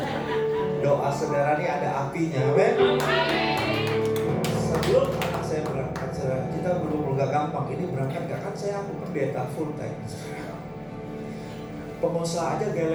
Doa saudara ini ada apinya, amin. Sebelum anak saya berangkat, saudara, kita belum gak gampang. Ini berangkat gak kan saya pendeta full time. Pengusaha aja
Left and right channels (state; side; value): identical; both; correlation 1.00